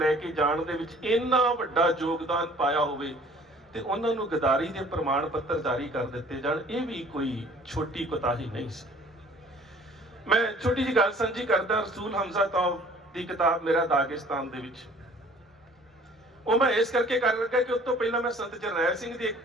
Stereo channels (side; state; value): both; normal; correlation 0.52